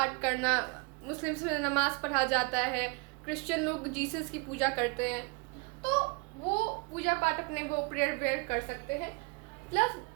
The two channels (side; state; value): left; quieter; 30.2 dB